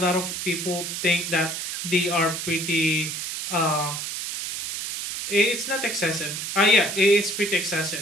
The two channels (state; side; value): noise; right; hiss, 5 dB below the sound